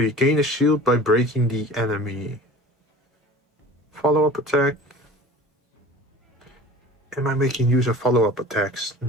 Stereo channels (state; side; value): normal; both; correlation 0.41